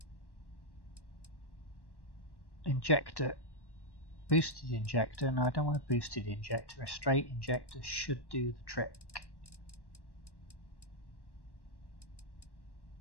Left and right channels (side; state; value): right; late; 1.1 ms